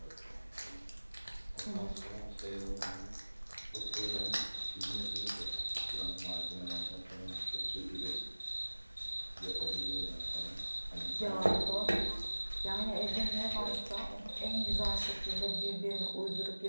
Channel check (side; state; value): both; inverted; correlation -1.00